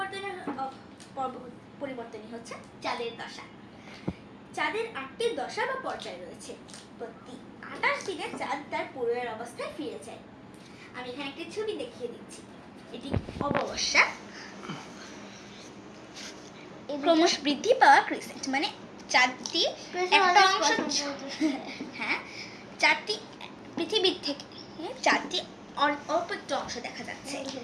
পরিবর্তনই হচ্ছে চাঁদের দশা। চাঁদের 8টি দশা বা পর্যায় রয়েছে। প্রতি 28 দিনে চাঁদ তার পূর্বের অবস্থায় ফিরে যায়। আমি এখানে একটি ছবি দেখিয়ে দিচ্ছি। এটি অমাবস্যা, ক্রমশ বৃদ্ধি পাওয়া ক্রিসেন্ট, মানে চাঁদটি একটা অংশ, হ্যাঁ, চাঁদটি পৃথিবীর থেকে চাঁদটি অল্প একটু অংশ দেখা যাচ্ছে।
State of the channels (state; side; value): identical; both; correlation 1.00